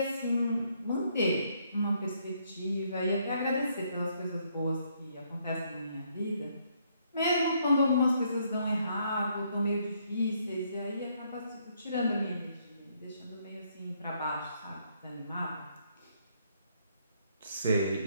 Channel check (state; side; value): inverted; both; correlation -0.70